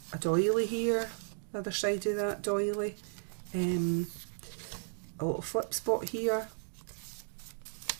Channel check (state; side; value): silent; left; digital silence